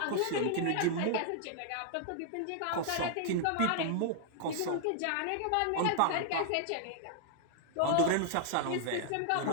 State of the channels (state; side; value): different; both; correlation 0.00